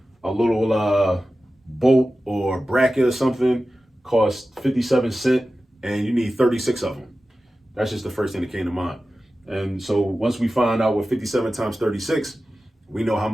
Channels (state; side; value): normal; both; correlation 0.94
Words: a little bolt or bracket or something costs 57 cents and you need 36 of them. That's just the first thing that came to mind. And so once we find out what 57 times 36, we know how